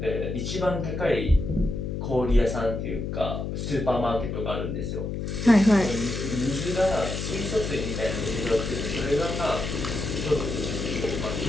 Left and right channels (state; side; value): noise; left; hum, 4 dB below the sound